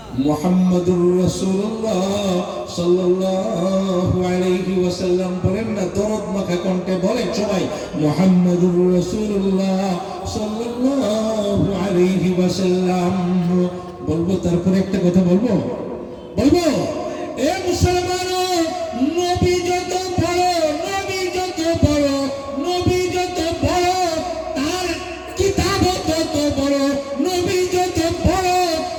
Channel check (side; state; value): both; identical; correlation 1.00